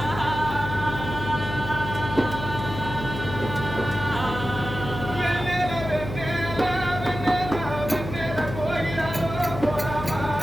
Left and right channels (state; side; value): noise; left; hum, 8 dB below the sound